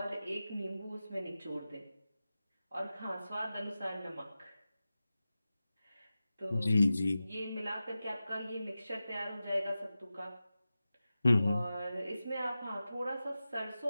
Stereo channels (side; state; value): both; inverted; correlation -0.93